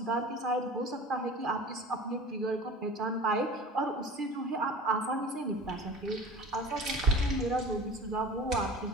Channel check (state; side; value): normal; both; correlation 0.40